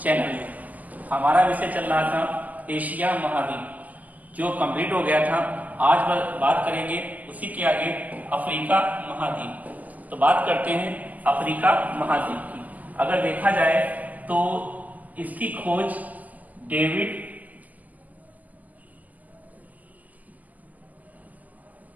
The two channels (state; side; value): late; left; 0.079 ms